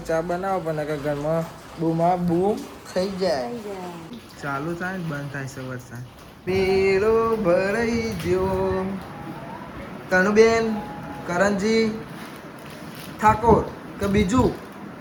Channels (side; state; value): both; identical; correlation 1.00